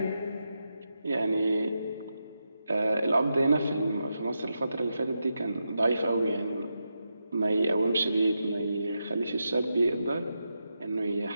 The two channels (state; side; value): inverted; both; correlation -0.87